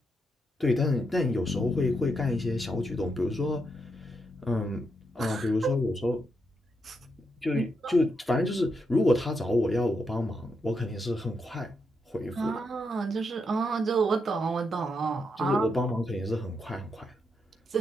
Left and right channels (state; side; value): normal; both; correlation 0.82